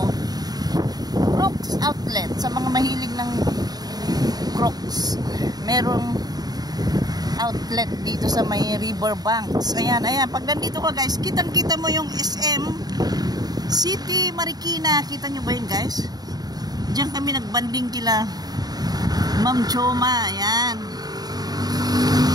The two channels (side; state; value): left; late; 0.19 ms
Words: Crocs outlet sa mga mahilig ng Crocs. Merong outlet dito sa may Riverbanks. Ayan, ayan. Pag nandito ka guys, kitang-kita mo yung SM City Marikina. Kita nyo ba yun guys? Diyan kami nagbanding kila Ma'am Choma. Ayan.